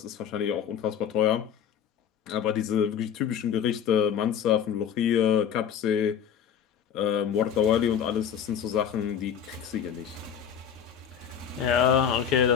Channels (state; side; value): quieter; right; 8.4 dB